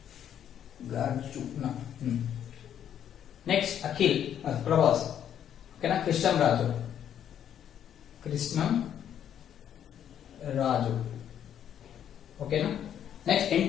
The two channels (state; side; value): quieter; right; 9.7 dB